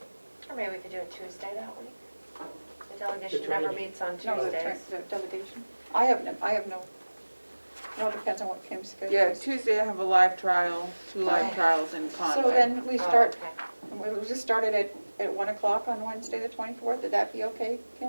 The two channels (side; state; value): both; inverted; correlation -1.00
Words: Or maybe we could do it Tuesday that week. The delegation never training. meets on no, Tuesdays. the delegation. I have no, it depends on what Kim's schedule yeah, is. Tuesday I have a live trial, 2 live trials in Conway. So then we Oh, start, okay. we'll just start it at 1 o'clock on Wednesday, the 24th. Would that be okay,